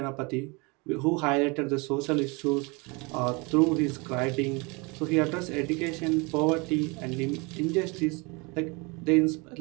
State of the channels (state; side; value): quieter; left; 28.2 dB